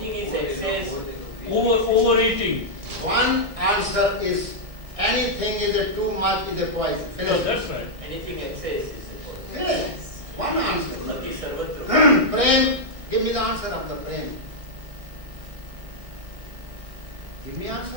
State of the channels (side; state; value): left; late; 1.6 ms